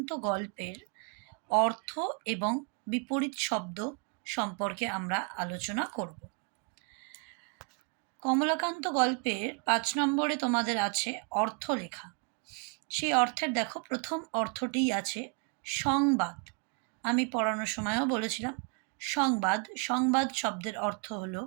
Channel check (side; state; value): left; quieter; 35.5 dB